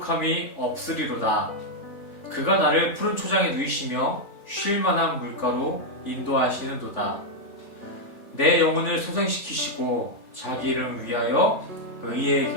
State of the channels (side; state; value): right; late; 3.4 ms